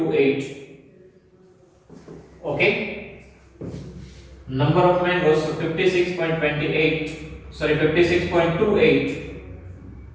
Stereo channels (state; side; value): identical; both; correlation 1.00